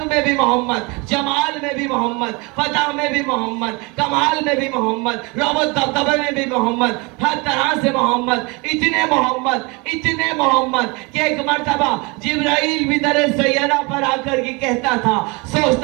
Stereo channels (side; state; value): left; quieter; 27.6 dB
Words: میں بھی محمد، جمال میں بھی محمد، فتح میں بھی محمد، کمال میں بھی محمد، رعب دبدبے میں بھی محمد، ہر طرح سے محمد، اتنے محمد کہ ایک مرتبہ جبرائیل بھی در سیارہ پر آ کر کے کہتا تھا،